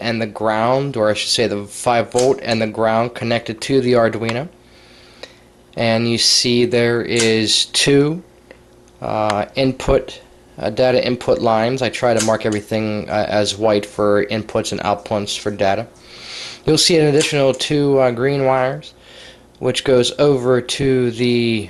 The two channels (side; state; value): both; identical; correlation 1.00